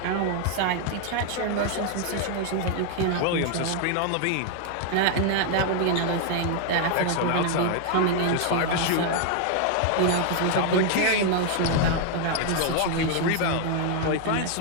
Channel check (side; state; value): both; different; correlation 0.00